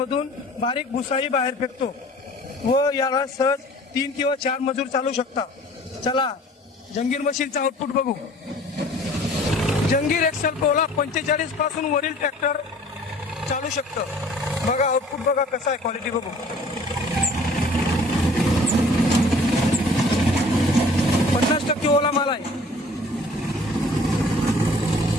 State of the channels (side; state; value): both; normal; correlation 0.50